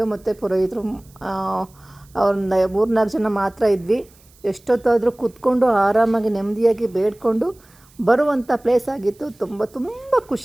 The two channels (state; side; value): noise; right; hiss, 29 dB below the sound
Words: ಮತ್ತು ಪುರೋಹಿತರು ಒಂದು 3-4 ಜನ ಮಾತ್ರ ಇದ್ವಿ. ಎಷ್ಟೊತ್ತಾದರೂ ಕೂತ್ಕೊಂಡು ಆರಾಮಾಗಿ ನೆಮ್ಮದಿಯಾಗಿ ಬೇಡ್ಕೊಂಡು ಬರುವಂಥ ಪ್ಲೇಸ್ ಆಗಿತ್ತು. ತುಂಬ